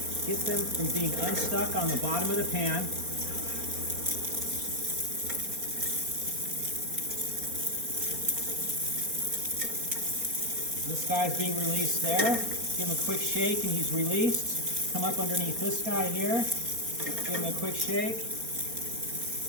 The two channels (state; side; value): late; left; 4.3 ms